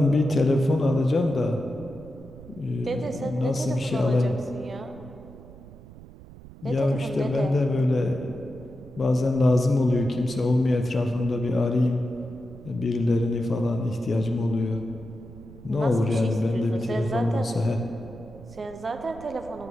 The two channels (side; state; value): right; noise; rumble, 18 dB below the sound